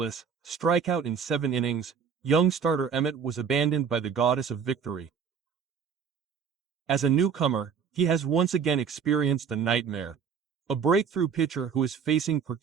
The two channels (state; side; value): quieter; left; 6.7 dB